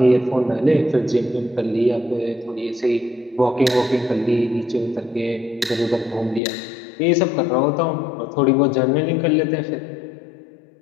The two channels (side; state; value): right; drops out; at 6.4 s